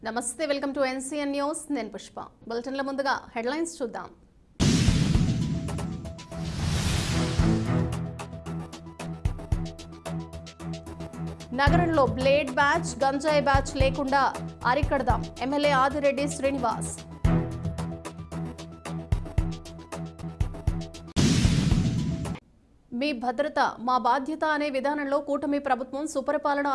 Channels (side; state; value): both; identical; correlation 1.00